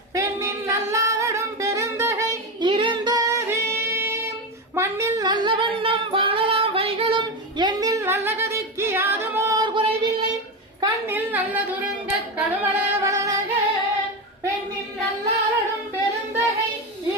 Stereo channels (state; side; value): normal; both; correlation 0.16